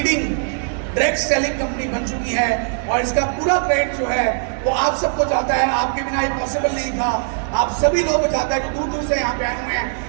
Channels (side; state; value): left; silent; 66 dB below the other